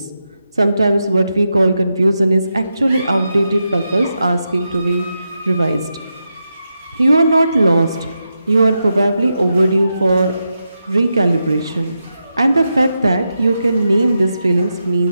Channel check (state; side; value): inverted; both; correlation -0.87